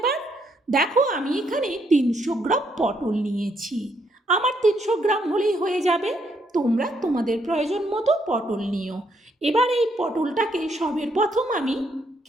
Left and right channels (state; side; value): normal; both; correlation 0.74